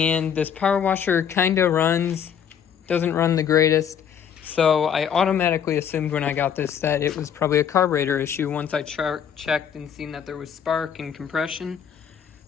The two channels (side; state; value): right; quieter; 8.2 dB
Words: this power washer kind of doesn't run the greatest. So I automatically assumed when I got this that it was probably a carburetor issue once I checked and seen that there was spark and compression.